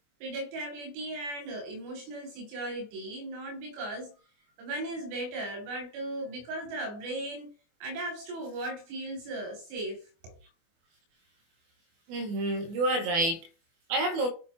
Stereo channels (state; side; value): late; left; 24 ms